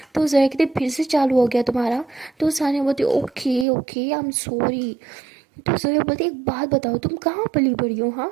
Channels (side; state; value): left; drops out; at 3.7 s